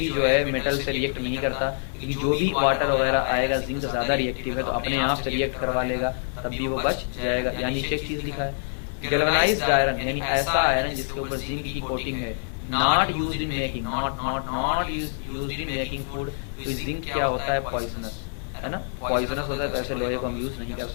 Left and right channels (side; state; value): right; silent; digital silence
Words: जो है मेटल से रिएक्ट नहीं करता, क्योंकि जो भी वाटर वगैरह आएगा जिंक ज्यादा रिएक्टिव है तो अपने आप से रिएक्ट करवा लेगा, तब भी वो बच जाएगा। यानी नीचे एक चीज लिखा है, गैल्वेनाइज्ड आयरन यानी ऐसा आयरन जिसके ऊपर जिंक की कोटिंग है, not used in making, not used in making food. Zinc क्या होता है, पॉइजनस है ना, पॉइजनस होता है, वैसे लोहे को हम यूज नहीं कर